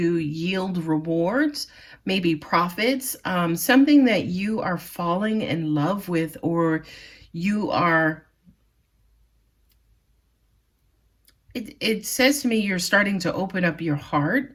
yield rewards, maybe profits, something that you are falling in love with, or you are, it says to me you're starting to open up your heart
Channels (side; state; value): both; identical; correlation 1.00